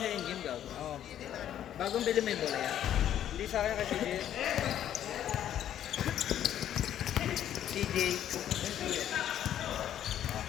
sa in-game ka. Oo. Bagong bili mo yung bola yan. Hindi sa akin kasi CJ.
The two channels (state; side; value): quieter; right; 10.8 dB